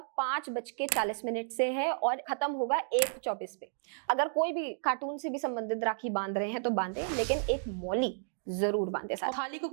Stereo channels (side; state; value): left; silent; digital silence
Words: 5:40 से है और खत्म होगा 1:24 पे। अगर कोई भी कार्टून से भी संबंधित राखी बांध रहे हैं तो बांधे, लेकिन एक मौली जरूर बांधे साथ। थाली को